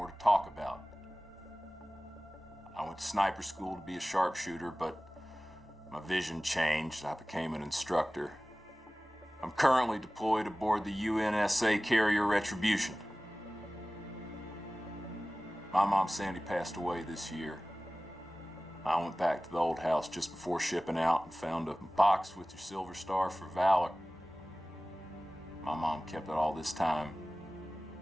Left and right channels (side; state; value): both; normal; correlation 0.98